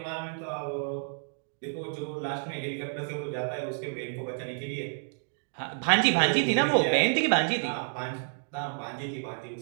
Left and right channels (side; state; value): left; silent; 58 dB below the other